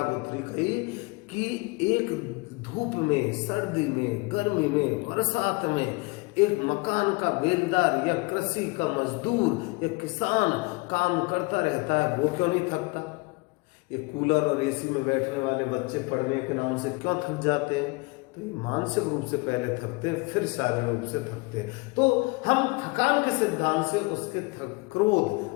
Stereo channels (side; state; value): right; quieter; 26.3 dB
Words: गुथरी कही कि एक धूप में, सर्दी में, गर्मी में, बरसात में एक मकान का बेलदार या कृषि का मजदूर या किसान काम करता रहता है, वो क्यों नहीं थकता? ये कूलर और एसी में बैठने वाले बच्चे पढ़ने के नाम से क्यों थक जाते हैं? तो मानसिक रूप से पहले थकते हैं, फिर शारीरिक रूप से थकते हैं। तो हम थकान के सिद्धांत से उसके